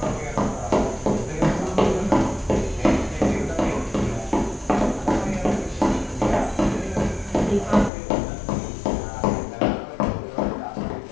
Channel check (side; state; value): right; drops out; at 7.9 s